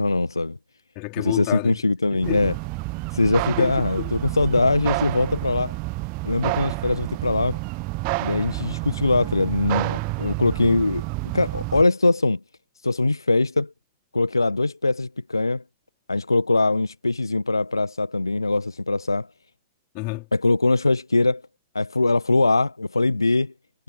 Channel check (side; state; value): both; inverted; correlation -0.86